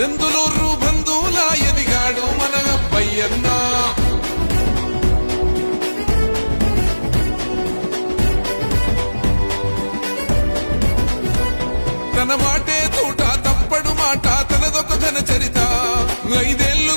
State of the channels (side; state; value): both; inverted; correlation -1.00